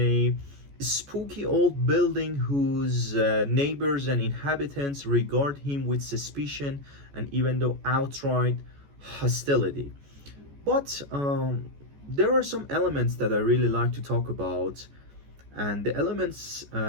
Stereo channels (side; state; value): left; late; 14 ms